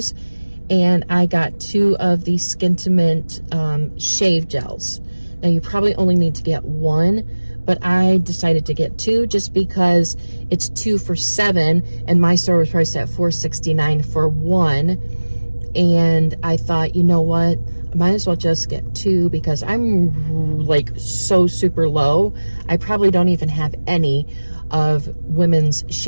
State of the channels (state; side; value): inverted; both; correlation -1.00